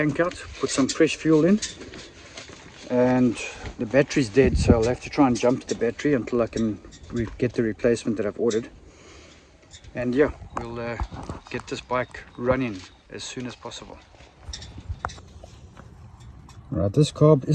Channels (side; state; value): both; identical; correlation 1.00